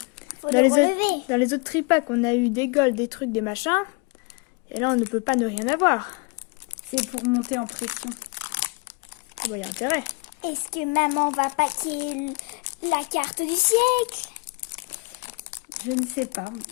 Faut Dans le les, relever. dans les autres tripacks, on a eu des golds, des trucs, des machins. Et là, on ne peut pas ne rien avoir. C'est pour monter en pression. Ah bah, y a intérêt. Est-ce que maman va paquer la carte du siècle? Je ne sais pas.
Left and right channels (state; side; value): quieter; right; 27.7 dB